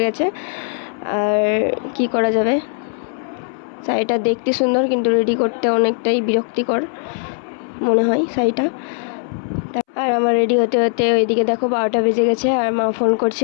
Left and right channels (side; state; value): right; silent; 67 dB below the other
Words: গেছে। আর কি করা যাবে, শাড়িটা দেখতে সুন্দর কিন্তু রেডি করতে অনেকটাই বিরক্তিকর মনে হয় শাড়িটা। আর আমার রেডি হতে হতে ওইদিকে দেখো 12টা বেজে গেছে। আর মা ফোন করছে